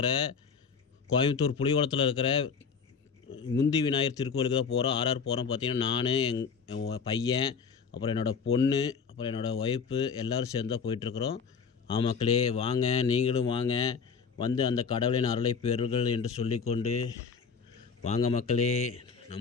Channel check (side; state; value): right; quieter; 5.9 dB